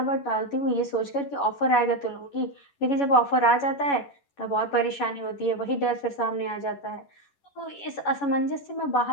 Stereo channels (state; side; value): late; right; 11 ms